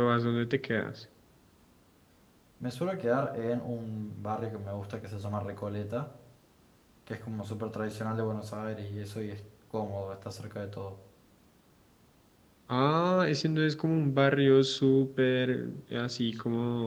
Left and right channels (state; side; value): identical; both; correlation 1.00